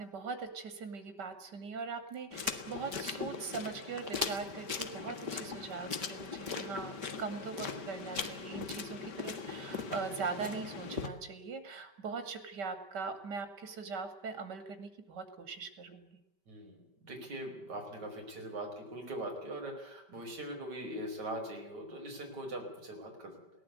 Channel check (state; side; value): late; left; 5.2 ms